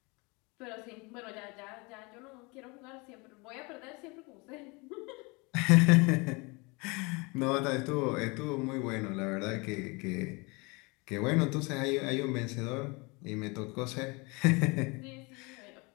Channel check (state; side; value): quieter; right; 27.6 dB